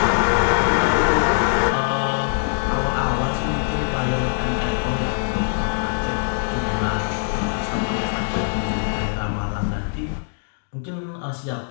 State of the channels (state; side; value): silent; right; 64 dB below the other